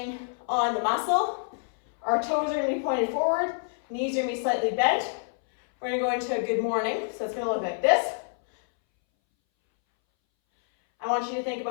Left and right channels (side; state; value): right; silent; 60 dB below the other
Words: on the muscle. Our toes are going to be pointed forward, knees are going to be slightly bent. We're going to go into a good morning, so it's going to look like this. I want you to think